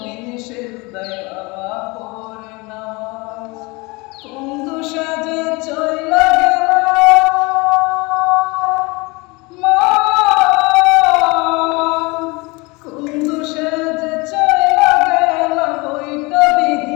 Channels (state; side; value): quieter; right; 25.8 dB